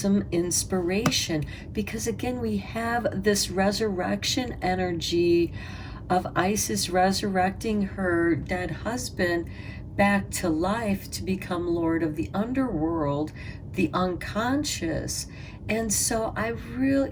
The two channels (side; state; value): both; identical; correlation 1.00